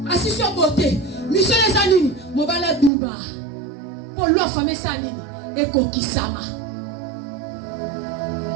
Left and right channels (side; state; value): left; drops out; at 2.9 s